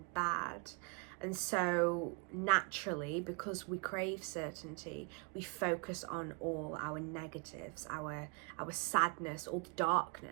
bad. And so naturally, because we crave certainty, we focus on all our negatives, our sadness, all the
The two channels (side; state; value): left; quieter; 31.6 dB